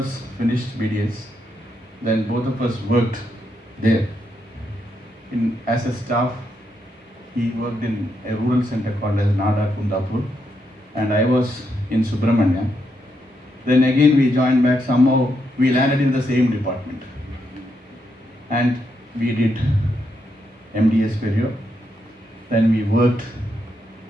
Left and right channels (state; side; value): normal; both; correlation 0.80